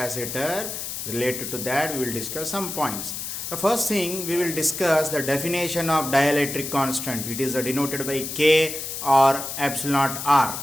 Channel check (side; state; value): left; noise; hiss, 6 dB below the sound